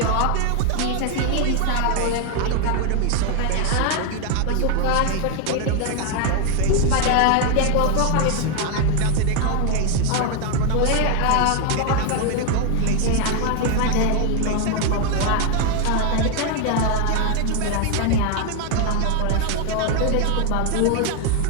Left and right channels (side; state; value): both; different; correlation 0.01